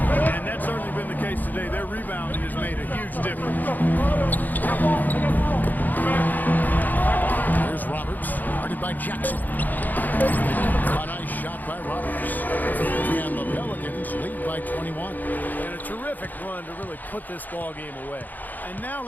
And that's certainly been the case today. Their rebounding has made a huge difference. Here's Roberts, guarded by Jackson. A nice shot by Roberts. And the Pelicans lead by 21. And a terrific run to really put this ball game away. And now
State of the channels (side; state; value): right; late; 0.084 ms